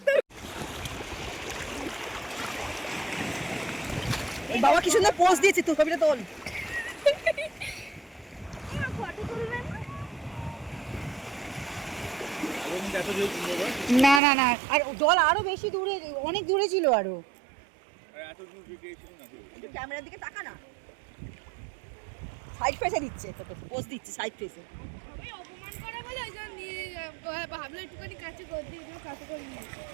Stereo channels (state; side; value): drops out; left; at 14.2 s